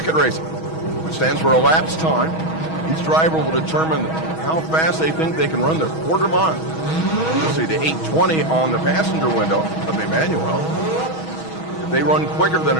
racing, which stands for elapsed time. Each driver will determine how fast they think they can run their quarter mile. You'll see the 8:20 on the passenger window of Emmanuel. If they run quicker than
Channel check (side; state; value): right; late; 6.3 ms